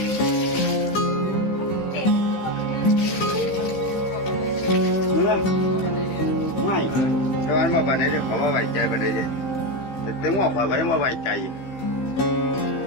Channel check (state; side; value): late; right; 15 ms